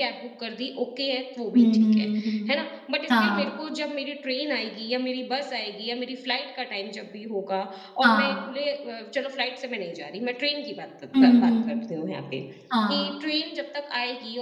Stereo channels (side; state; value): both; identical; correlation 1.00